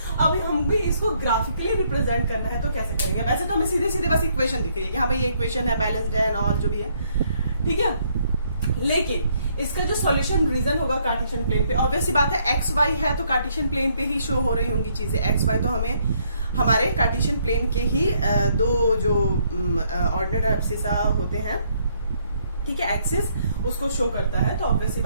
अब हम भी इसको ग्राफिकली रिप्रेजेंट करना है तो कैसे करेंगे। वैसे तो हमें सीधे सीधे बस इक्वेशन दिख रही है कि हाँ भाई ये इक्वेशन है, बैलेंस्ड है और जो भी है, ठीक है। लेकिन इसका जो सॉल्यूशन रीजन होगा कार्टेशियन प्लेन पे, ऑब्वियस सी बात है एक्स वाई है तो कार्टेशियन प्लेन पे ही शो हो रही होंगी चीजें। एक्स वाई तो हमें हमारे कार्टेशियन प्लेन के ही दो जो ऑर्डिनेट एब्सिसा होते हैं, ठीक है, एक्सिस उसको शो करता है। तो ऑब्वियस सी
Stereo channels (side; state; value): both; inverted; correlation -0.69